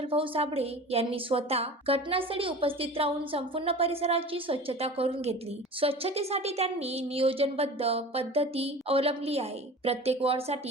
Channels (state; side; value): normal; both; correlation 0.37